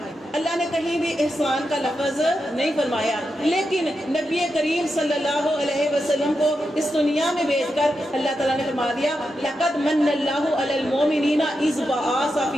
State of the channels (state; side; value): normal; both; correlation 0.87